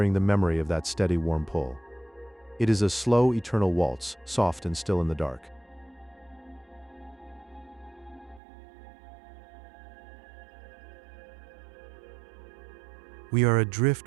the memory of that steady warm pull. It is a slow, eternal waltz, soft and still in the dark. We are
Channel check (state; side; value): drops out; left; at 8.4 s